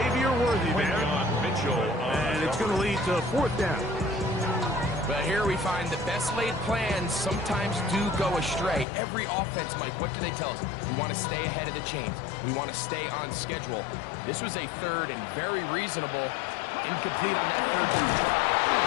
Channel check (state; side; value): drops out; right; at 8.8 s